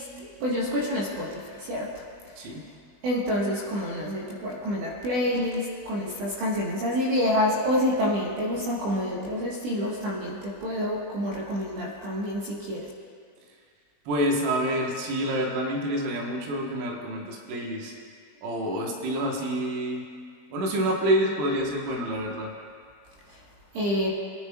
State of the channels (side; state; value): left; late; 20 ms